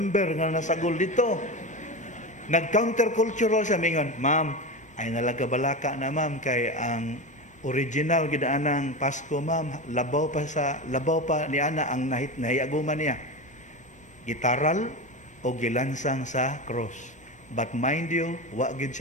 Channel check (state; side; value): normal; both; correlation 0.22